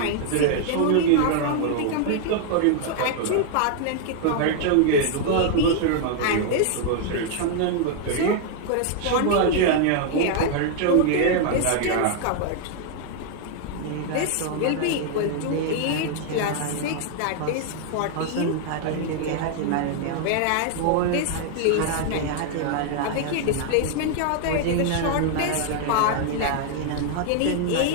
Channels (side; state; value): both; different; correlation 0.00